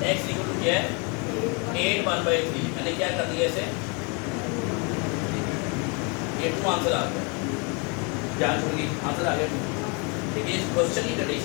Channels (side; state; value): right; quieter; 33.1 dB